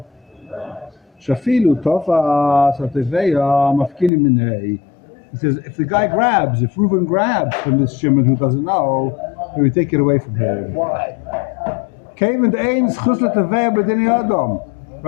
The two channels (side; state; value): right; drops out; at 4.1 s